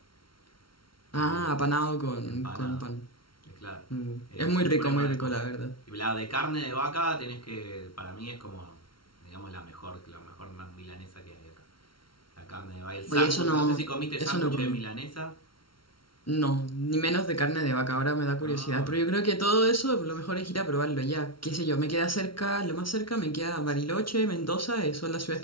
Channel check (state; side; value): late; right; 0.74 ms